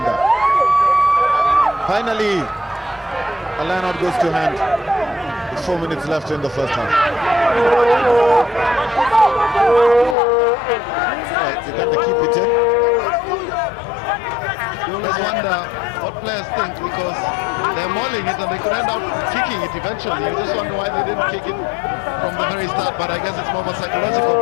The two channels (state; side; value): drops out; right; at 10.2 s